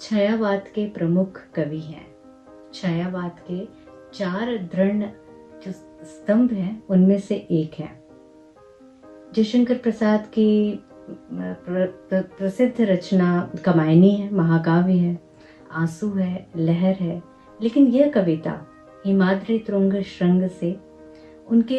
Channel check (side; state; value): both; identical; correlation 1.00